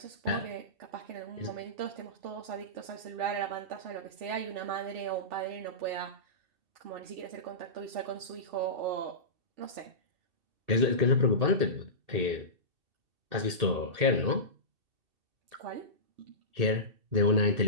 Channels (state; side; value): late; left; 2.7 ms